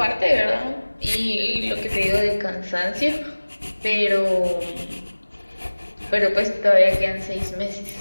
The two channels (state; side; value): inverted; both; correlation -1.00